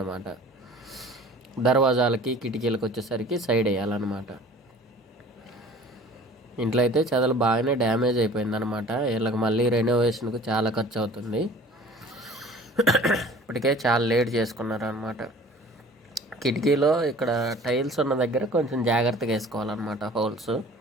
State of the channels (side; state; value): both; normal; correlation 0.46